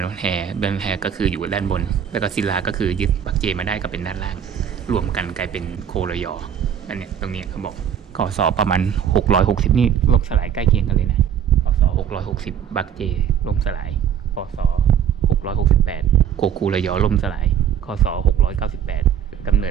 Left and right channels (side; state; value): left; quieter; 8.9 dB